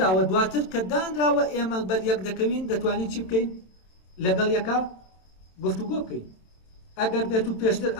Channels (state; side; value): late; right; 27 ms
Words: دواتر کە دانراوە ئێمە بەریەک دەکەوین دەتوانین چی بکەین؟ لەگەڵ یەکە گفتوگۆ بکەین. ئەگەر بێت و پێشتر